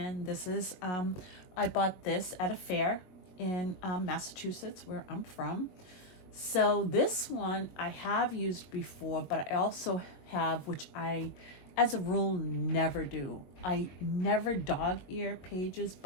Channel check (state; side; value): late; right; 21 ms